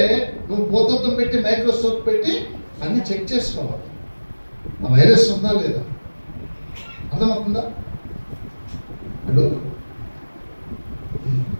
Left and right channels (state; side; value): inverted; both; correlation -1.00